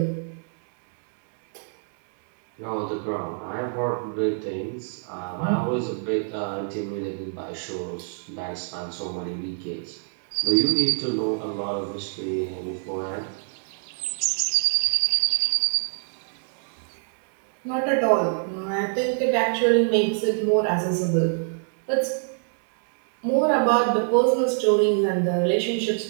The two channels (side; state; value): left; silent; digital silence